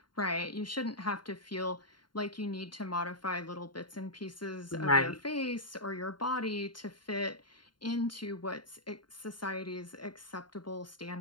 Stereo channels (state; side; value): late; right; 0.72 ms